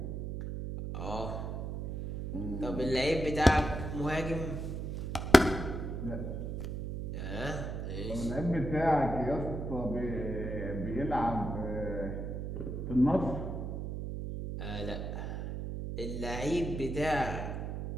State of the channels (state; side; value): noise; right; hum, 4 dB below the sound